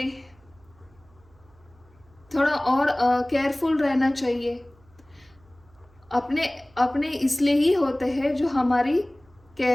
थोड़ा और केयरफुल रहना चाहिए। अपने इसलिए ही होते हैं जो हमारी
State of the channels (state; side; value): noise; right; hum, 30 dB below the sound